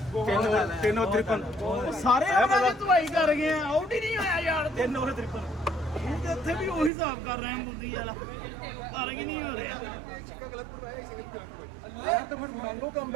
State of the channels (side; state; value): left; drops out; at 6.9 s